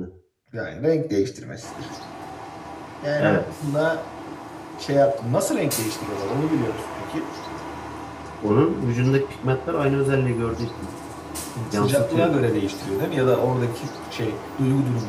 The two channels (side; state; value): both; identical; correlation 1.00